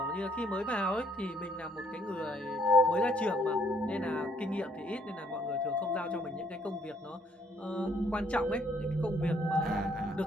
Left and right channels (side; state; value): both; normal; correlation 0.67